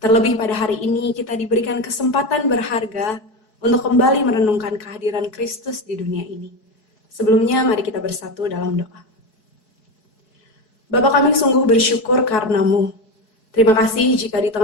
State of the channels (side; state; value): right; late; 4.7 ms